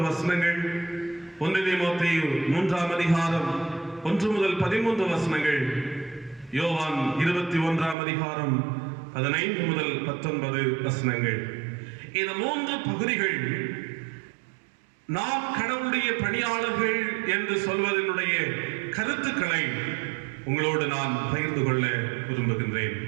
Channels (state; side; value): drops out; left; at 8.0 s